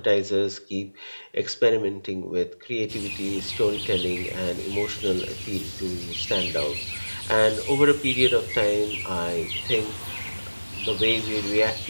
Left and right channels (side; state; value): both; inverted; correlation -1.00